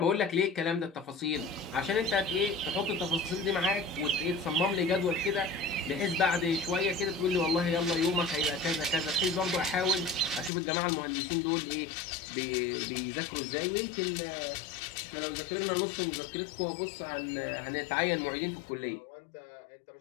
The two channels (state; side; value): drops out; right; at 10.5 s